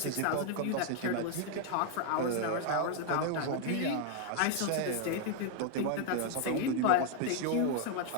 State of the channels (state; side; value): different; both; correlation 0.00